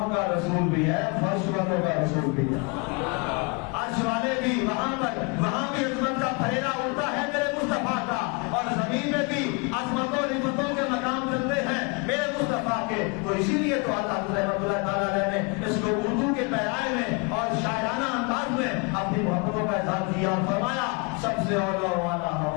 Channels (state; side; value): quieter; right; 31.5 dB